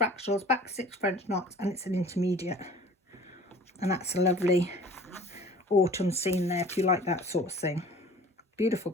back stitch, French knots, and it's an intermediate. And that's a lovely autumn scene there if you like that sort of thing. Beautiful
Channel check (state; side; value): normal; both; correlation 0.46